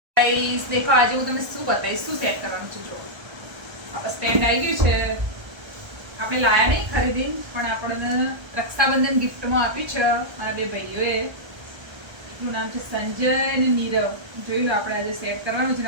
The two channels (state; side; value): late; left; 1.3 ms